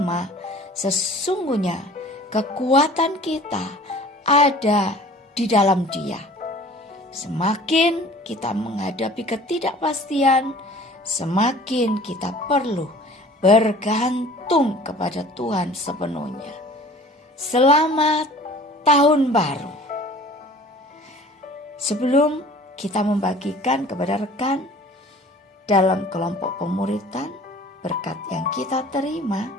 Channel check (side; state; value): both; normal; correlation 0.47